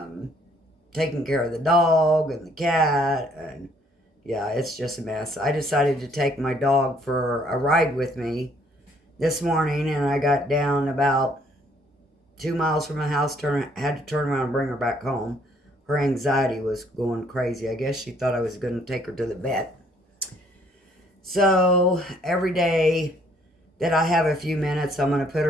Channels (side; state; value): both; normal; correlation 0.64